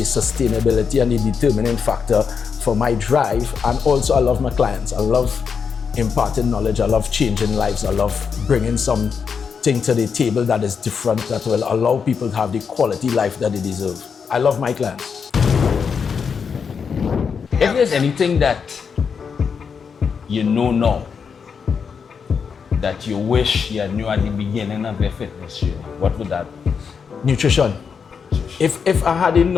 sustainability and the determining factor for my drive. And also, I love my clients. I love imparting knowledge. I love changing lives. I love bringing something to the table that is different, that will allow people to have the quality life that they deserve. I love my clients. If there's anything that you know now that you wish you knew at the beginning of your fitness journey, what would that be? Nutrition. If I had a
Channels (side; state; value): right; quieter; 6.2 dB